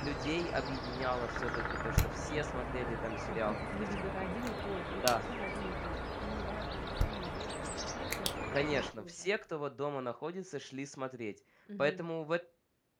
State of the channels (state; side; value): identical; both; correlation 1.00